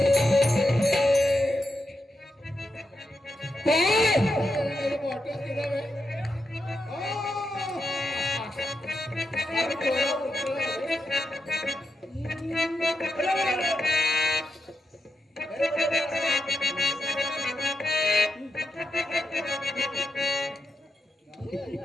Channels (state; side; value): normal; both; correlation 0.86